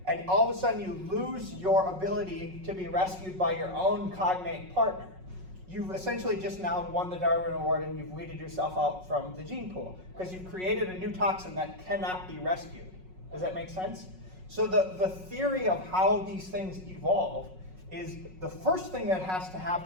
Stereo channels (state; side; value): late; left; 5.4 ms